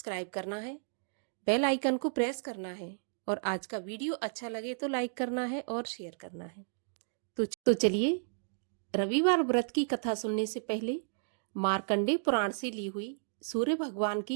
करना है, बेल आइकन को प्रेस करना है और आज का वीडियो अच्छा लगे तो लाइक करना है और शेयर करना है। तो चलिए रविवार व्रत की कथा सुनने से पहले मार्कंडेय पुराण से ली हुई सूर्य भगवान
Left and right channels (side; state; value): left; silent; digital silence